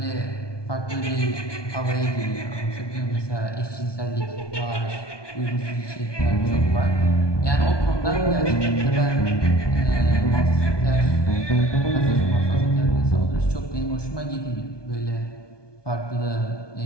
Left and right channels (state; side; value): late; right; 1.2 ms